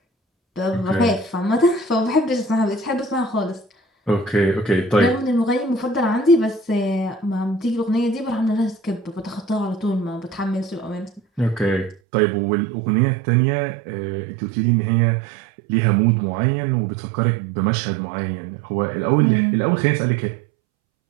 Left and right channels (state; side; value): drops out; left; at 12.0 s